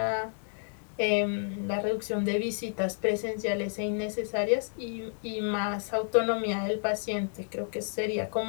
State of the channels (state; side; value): silent; right; 58 dB below the other